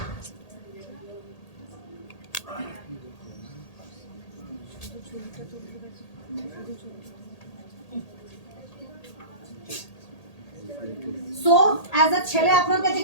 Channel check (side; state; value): right; late; 1.8 ms